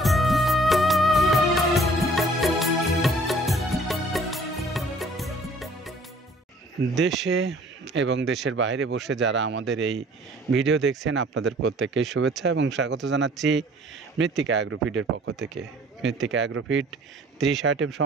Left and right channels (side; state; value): both; normal; correlation 0.54